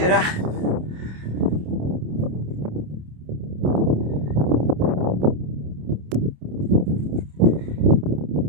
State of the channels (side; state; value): left; late; 27 ms